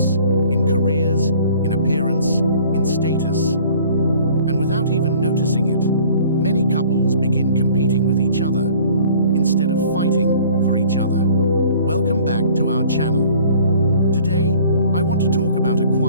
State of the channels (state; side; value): inverted; both; correlation -0.52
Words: in careers, in appearance, in status. And without even noticing it, many couples begin competing with each other instead of fighting for each other. Welcome back to our channel. Today, I want to talk about a